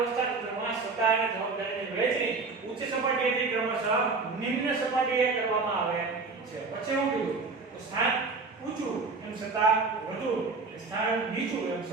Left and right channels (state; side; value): quieter; left; 4.2 dB